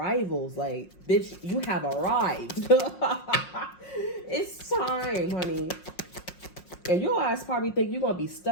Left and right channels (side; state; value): right; late; 5.5 ms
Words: like, bitch, you have arrived. It's time, honey. And your ass probably think you're gonna be